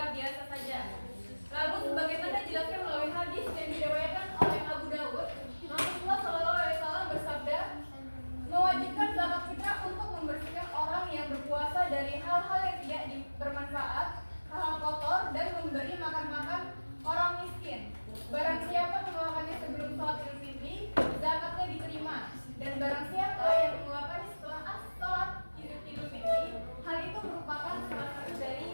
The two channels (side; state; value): both; inverted; correlation -1.00